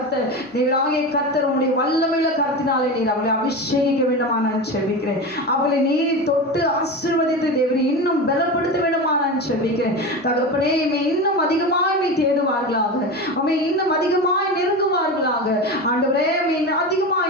கர்த்தர் உன்னுடைய வல்லமையுள்ள கருத்தினாலே நீர் அவளை அபிஷேகிக்க வேண்டுமா நான் செபிக்கிறேன். அவளை நீர் தொட்டு ஆசீர்வதித்து தேவனை இன்னும் பலப்படுத்த வேண்டுமா நான் செபிக்கிறேன். தகப்பனே, இன்னும் அதிகமாய் தேடுவார்களாக, உம்மை இன்னும் அதிகமாய் நெருங்குவார்களாக ஆண்டவரே,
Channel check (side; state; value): both; normal; correlation 0.24